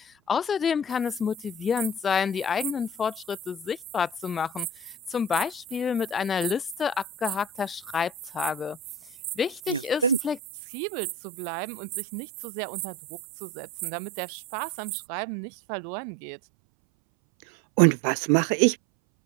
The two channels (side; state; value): left; drops out; at 10.4 s